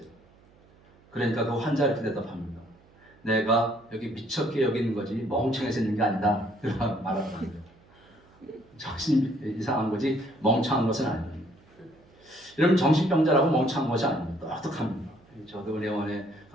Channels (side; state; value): right; noise; hum, 29 dB below the sound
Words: 그러니까 그 환자 이렇게 대답합니다. 내가 여기 미쳤게 여기는 거지 멍청해서 있는 게 아니다. 그렇게 말하더라고요. 정신이 이상한 거지 멍청한 것은 아닙니다. 여러분, 정신병자라고 멍청한 것이 아닙니다. 똑똑합니다. 저도 은혜원에